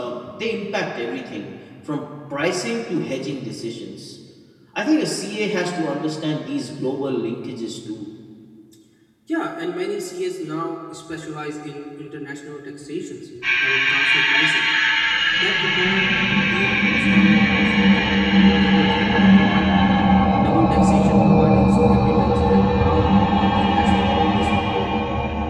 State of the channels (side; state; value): both; identical; correlation 1.00